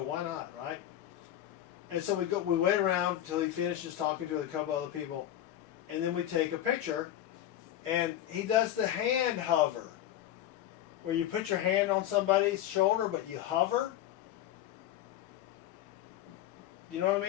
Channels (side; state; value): right; quieter; 12.2 dB